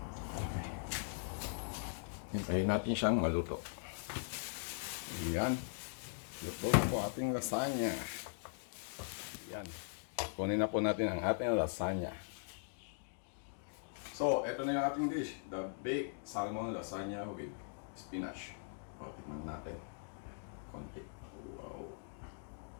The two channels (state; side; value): silent; right; digital silence